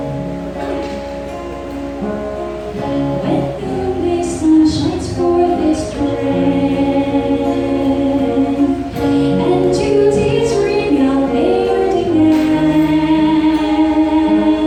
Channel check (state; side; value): identical; both; correlation 1.00